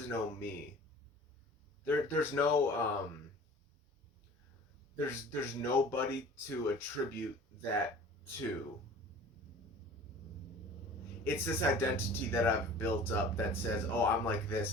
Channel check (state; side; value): normal; both; correlation 0.44